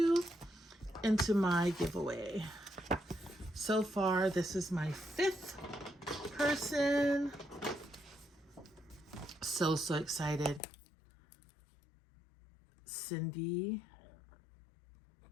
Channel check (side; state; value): right; drops out; at 10.6 s